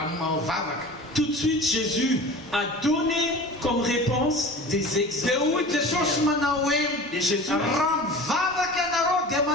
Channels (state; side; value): normal; both; correlation 0.38